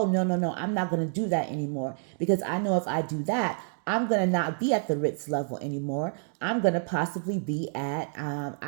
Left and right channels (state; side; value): silent; left; 59 dB below the other